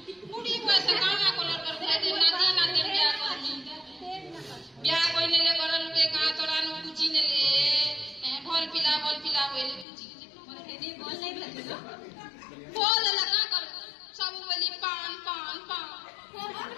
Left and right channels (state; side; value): drops out; right; at 9.9 s